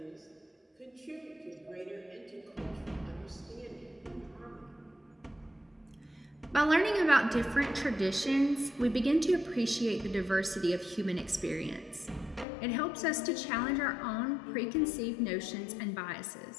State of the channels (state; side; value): drops out; right; at 12.5 s